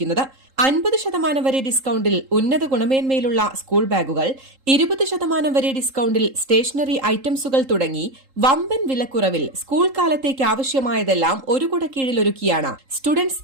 50% വരെ ഡിസ്കൌണ്ടിൽ ഉന്നത ഗുണമേന്മയിലുള്ള സ്കൂൾ ബാഗുകൾ, 20% വരെ ഡിസ്കൌണ്ടിൽ സ്റ്റേഷനറി ഐറ്റംസുകൾ തുടങ്ങി വമ്പൻ വിലക്കുറവിൽ സ്കൂൾ കാലത്തേക്ക് ആവശ്യമായതെല്ലാം ഒരു കുടക്കീഴിൽ ഒരുക്കിയാണ് സ്റ്റുഡൻസ്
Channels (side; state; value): left; late; 3.8 ms